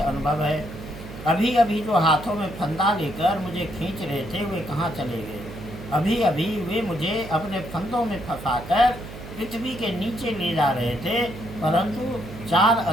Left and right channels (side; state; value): right; noise; hum, 13 dB below the sound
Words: अनुभव है? अभी अभी जो हाथों में फंदा लेकर मुझे खींच रहे थे, वे कहाँ चले गए? अभी अभी वे मुझे अपने फंदों में फंसाकर पृथ्वी के नीचे ले जा रहे थे, परंतु 4